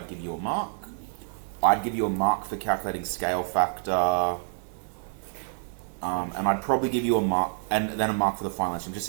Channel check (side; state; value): left; silent; digital silence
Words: give you a mark. I'd give you a mark for calculating scale factor, and I'd probably give you a mark, and then a mark for the final answer. I'm just